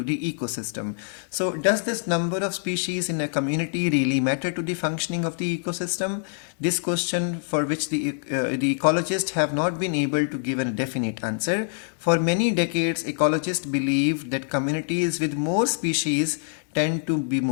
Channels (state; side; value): silent; right; digital silence